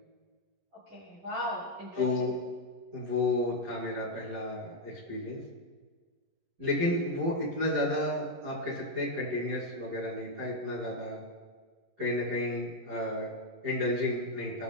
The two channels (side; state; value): left; late; 11 ms